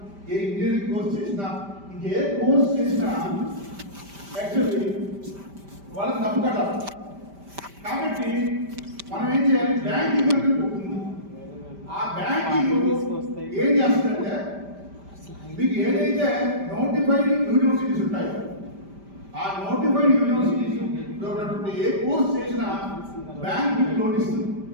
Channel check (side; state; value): left; late; 5.1 ms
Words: ఏ ఇంజనీరింగ్ కోర్స్ చేసినా, ఇంకే కోర్స్ చేసినా యాక్చువల్లీ వాళ్ళకి డబ్బు కట్టాలి. కాబట్టి మనం ఏం చేయాలి, బ్యాంకింగ్ అనేది ఉంటుంది. ఆ బ్యాంకింగ్ ఏం చేస్తుందంటే మీకు ఏదైతే నోటిఫైడ్ యూనివర్సిటీస్ ఉంటాయో ఆ నోటిఫైడ్ యూనివర్సిటీస్ ఉన్నటువంటి ఏ కోర్స్ చేసినా బ్యాంక్ మీకు లోన్ ఇస్తుంది.